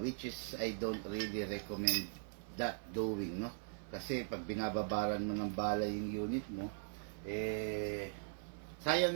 is I don't really recommend that doing, no? Kasi pag binababaran mo ng bala yung unit mo, sayang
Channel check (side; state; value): left; silent; 51 dB below the other